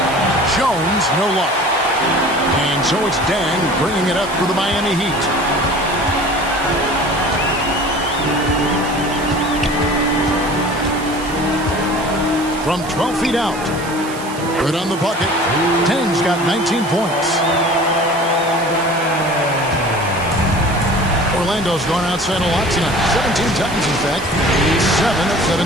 Jones, no luck. And so it's Dang bringing it up for the Miami Heat. From 12 feet out. Good on the bucket. Dang's got 19 points. Orlando's gone outside a lot tonight. 17 times, in fact. 7 of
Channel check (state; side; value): noise; right; hiss, 15 dB below the sound